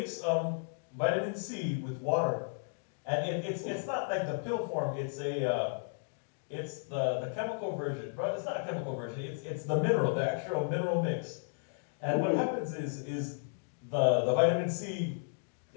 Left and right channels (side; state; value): right; silent; digital silence